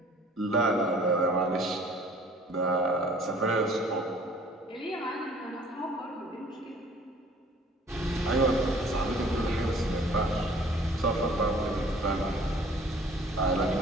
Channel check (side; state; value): both; normal; correlation 0.53